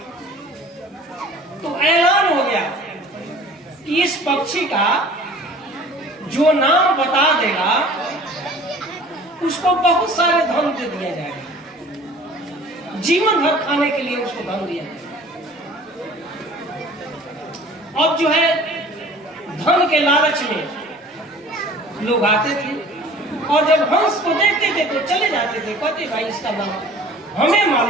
तो ऐलान हो गया कि इस पक्षी का जो नाम बता देगा उसको बहुत सारे धन दे दिया जाएगा, जीवन भर खाने के लिए उसको धन दिया जाएगा। अब जो है धन के लालच में लोग आते थे और जब हंस को देखते थे तो चले जाते थे, कहते भाई इसका नाम हमें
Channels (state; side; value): normal; both; correlation 0.47